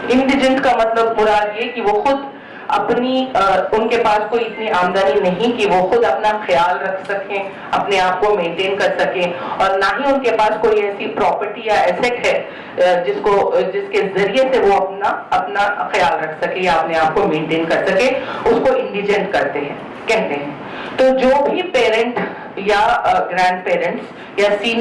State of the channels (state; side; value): identical; both; correlation 1.00